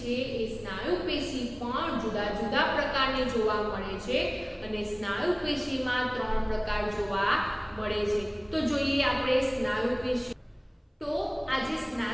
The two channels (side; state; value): both; identical; correlation 1.00